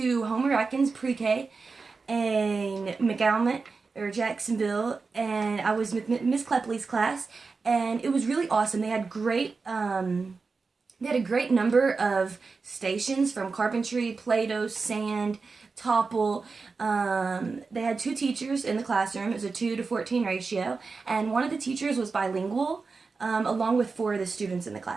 Homer Atkins pre-K in McAllen or Jacksonville, and I was with Miss Clepley's class, and it was really awesome. They had a great number of stations from carpentry, Play-Doh, sand, topple. They had 2 teachers in the classroom. It was a 2-to-14 ratio, and one of the teachers was bilingual, along with 4 of the students in the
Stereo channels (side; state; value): left; quieter; 4.4 dB